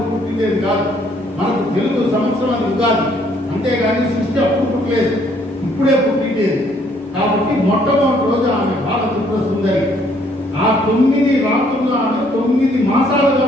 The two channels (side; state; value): both; normal; correlation 0.65